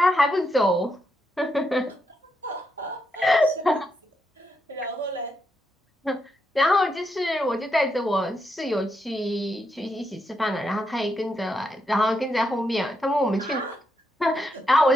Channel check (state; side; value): normal; both; correlation 0.82